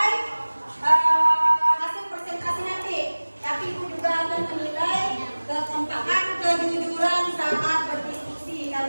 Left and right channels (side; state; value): both; inverted; correlation -1.00